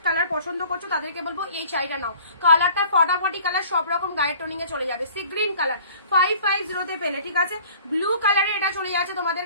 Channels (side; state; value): both; inverted; correlation -0.50